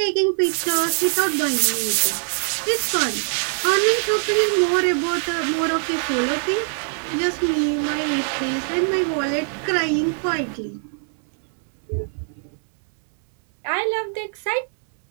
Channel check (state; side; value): silent; left; 64 dB below the other